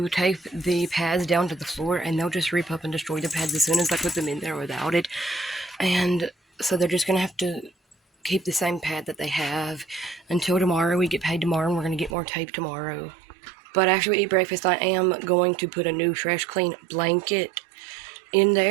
tape the pads down to the floor, and they'll just rip up and destroy the pads as soon as I put them in there without it. And so they're just going to have to keep the same pad that they have until tomorrow. We get paid tomorrow and we're going to get more tape tomorrow. But after we eat breakfast, I am going to put a new fresh clean blanket in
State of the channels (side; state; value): left; drops out; at 12.2 s